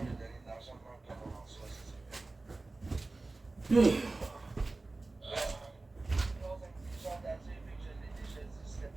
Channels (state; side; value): quieter; left; 3.3 dB